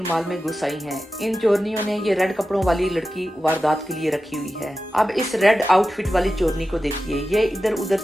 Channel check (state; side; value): normal; both; correlation 0.93